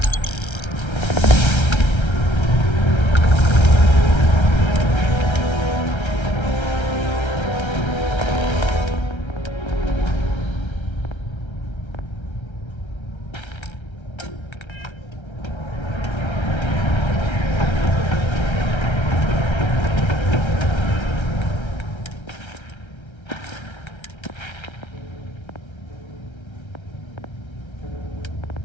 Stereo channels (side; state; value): right; late; 1.3 ms